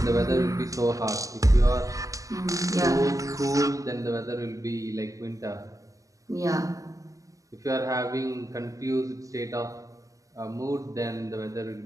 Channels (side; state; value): left; late; 0.16 ms